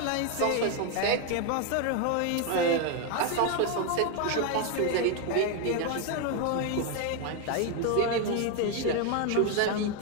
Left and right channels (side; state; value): both; different; correlation 0.01